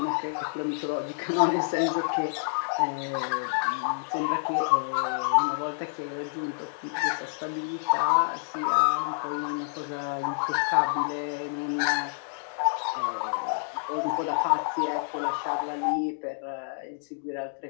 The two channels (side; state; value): right; silent; digital silence